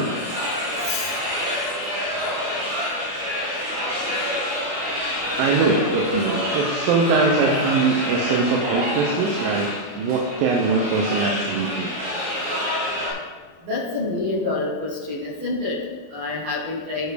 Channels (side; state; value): left; late; 30 ms